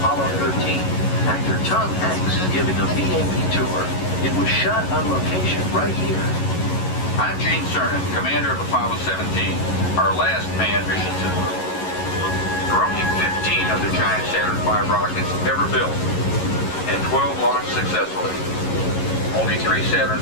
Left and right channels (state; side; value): late; right; 11 ms